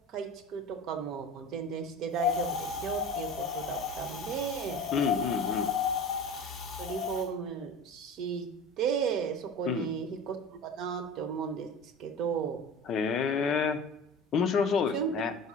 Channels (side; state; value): both; normal; correlation 0.35